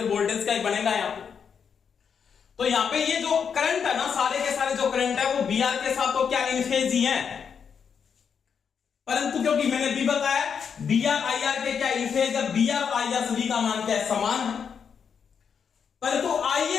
वोल्टेज का ही बनेगा यहां पे। तो यहां पे ये जो करंट है ना, सारे के सारे जो करंट है वो बी आर के साथ तो क्या इन फेज ही है, परंतु क्योंकि मैंने भी बताया बी आर आई आर के क्या इन फेज है, बी आर आई आर सभी का मान क्या है, समान है। परंतु आई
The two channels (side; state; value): right; quieter; 6.8 dB